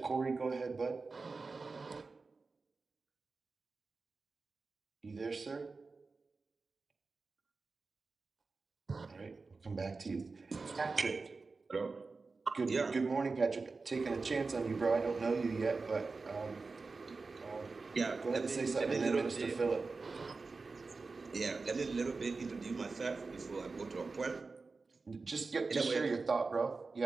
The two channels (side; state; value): left; quieter; 4.1 dB